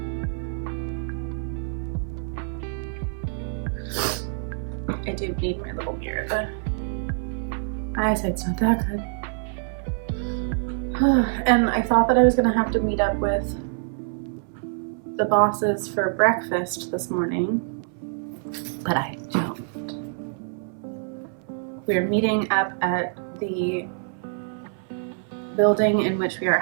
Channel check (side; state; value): left; silent; 61 dB below the other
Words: I do need my little mirror. The eyesight's not that good. And I thought that I was gonna have to meet up with the bosses for breakfast this morning, but I don't. We're meeting up at the building in which we are